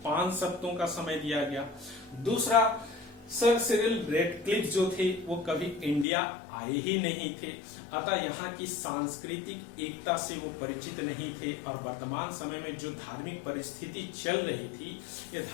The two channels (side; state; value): right; drops out; at 6.1 s